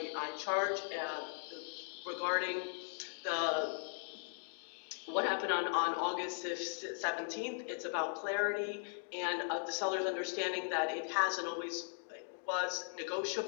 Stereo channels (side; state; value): right; silent; digital silence